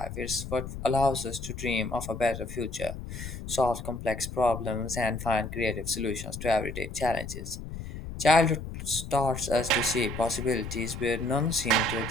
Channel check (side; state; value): left; noise; rumble, 9 dB below the sound